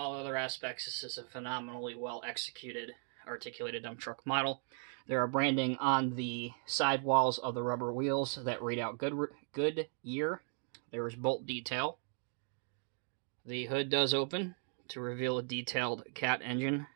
other aspects, this is a phenomenally well executed, articulated dump truck model. There are branding on the side walls of the rubber wheels that read out Goodyear. There is bolt detail. The hood does open to reveal a detailed cat engine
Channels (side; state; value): left; silent; 53 dB below the other